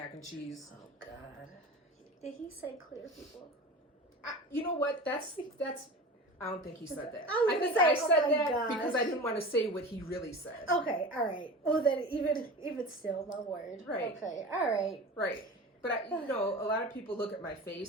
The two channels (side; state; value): both; normal; correlation 0.33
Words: and cheese. Oh God. Did he say clear people? You know what? That's. I don't think he said that. I think say, I said oh my that gosh. because I didn't want to say what he really said. Okay, all right. Well, then even still, my word. Right. Okay, all right. Right. But you know, a lot of people look at my